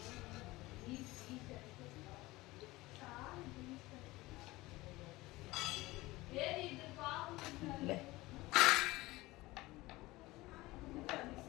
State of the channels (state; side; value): quieter; right; 19.8 dB